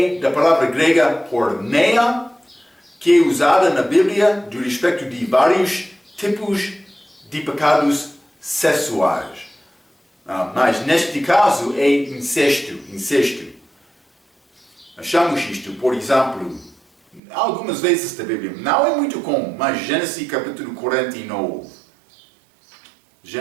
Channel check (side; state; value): left; drops out; at 17.2 s